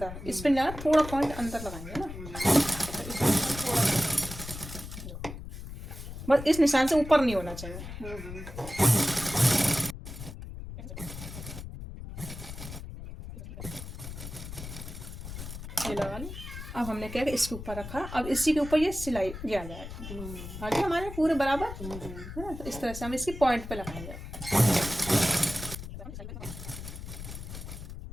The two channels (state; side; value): noise; left; rumble, 10 dB below the sound